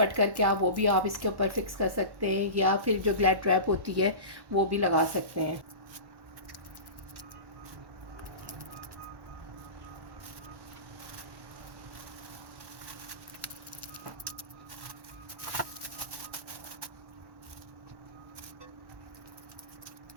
करके वो भी आप इसके ऊपर फिक्स कर सकते हैं, या फिर जो ग्लैड ट्रैप होती है वो भी लगा सकते हैं।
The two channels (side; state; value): left; late; 1.1 ms